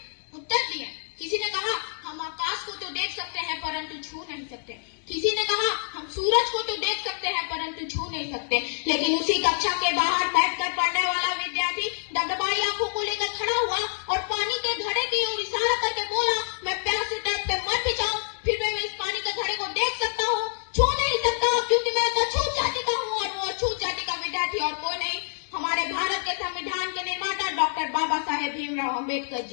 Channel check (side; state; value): right; silent; digital silence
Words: उत्तर दिए। किसी ने कहा हम आकाश को तो देख सकते हैं परंतु छू नहीं सकते। किसी ने कहा हम सूरज को तो देख सकते हैं परंतु छू नहीं सकते। लेकिन उसी कक्षा के बाहर बैठकर पढ़ने वाला विद्यार्थी डगडगाई आंखों को लेकर खड़ा हुआ और पानी के घड़े की ओर इशारा करके बोला, मैं प्यास से तड़पते मर भी जाऊं फिर मैं इस पानी के घड़े को देख सकता हूँ, छू नहीं सकता क्योंकि मैं तो अछूत जाति का हूँ। और वो अछूत जाति का विद्यार्थी और कोई नहीं, हमारे भारत के संविधान के निर्माता डॉक्टर बाबा साहेब भीमराव अम्बेडकर